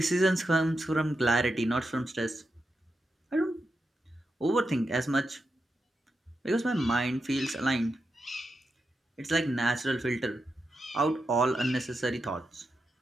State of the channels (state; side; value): normal; both; correlation 0.87